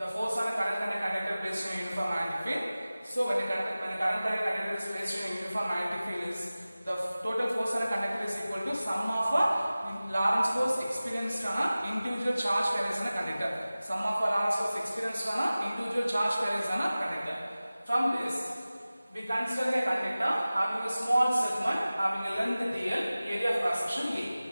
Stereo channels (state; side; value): inverted; both; correlation -0.97